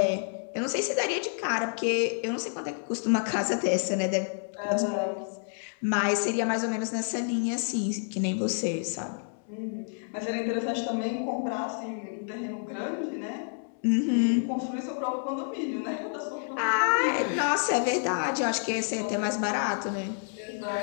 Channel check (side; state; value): right; silent; 59 dB below the other